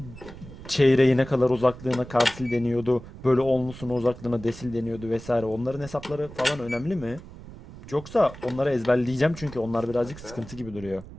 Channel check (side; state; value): right; noise; rumble, 16 dB below the sound